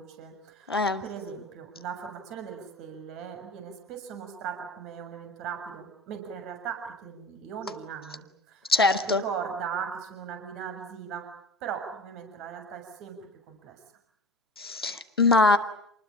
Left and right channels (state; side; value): normal; both; correlation 0.36